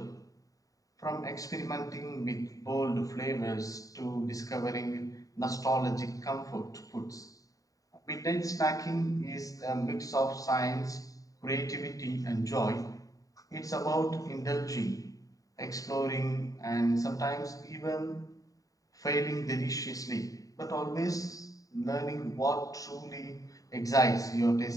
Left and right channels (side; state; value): right; late; 0.17 ms